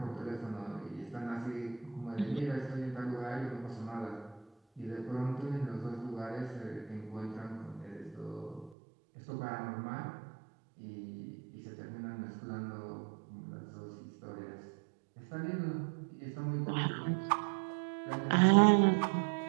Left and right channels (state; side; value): drops out; left; at 8.8 s